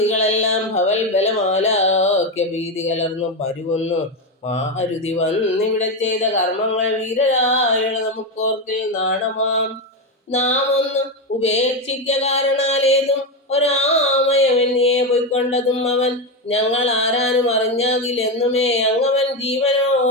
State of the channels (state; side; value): normal; both; correlation 0.12